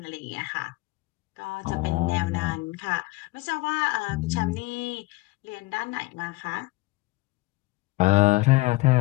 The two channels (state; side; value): quieter; right; 21.6 dB